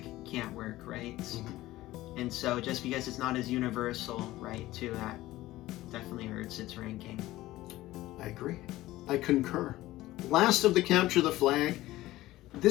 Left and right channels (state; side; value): quieter; right; 16.7 dB